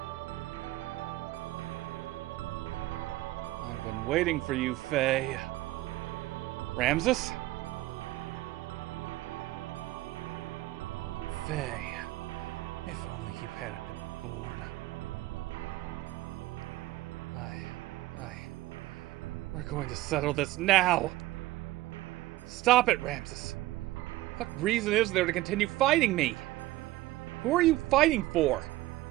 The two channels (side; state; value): left; quieter; 17.3 dB